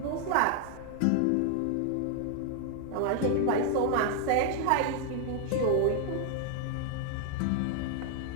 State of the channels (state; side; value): different; both; correlation 0.00